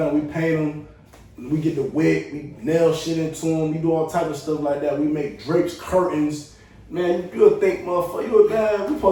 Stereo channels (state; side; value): identical; both; correlation 1.00